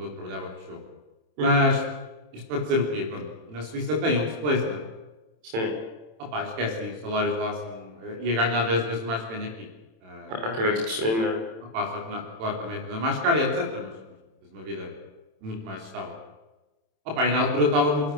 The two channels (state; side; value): late; left; 27 ms